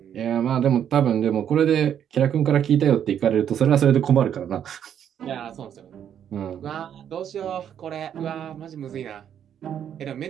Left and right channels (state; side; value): quieter; left; 9.3 dB